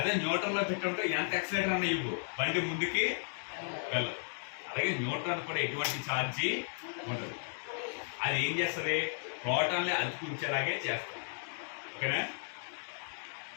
న్యూట్రల్లో పెట్టి ఉంటే ఎంత యాక్సిలేటర్ అన్న ఇవ్వు, బండి ముందుకి వెళ్ళదు. అలాగే న్యూట్రాన్ కూడా ఎటువంటి ఛార్జీ ఉంటుంది. అది ఏం చేస్తుంది? ప్రోటాన్ని అతుకుంచేలాగే చేస్తుంది. ఓకేనా?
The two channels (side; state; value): right; silent; digital silence